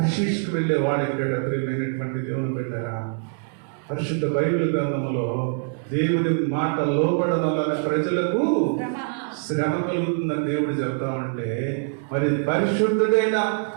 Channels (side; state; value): left; silent; 56 dB below the other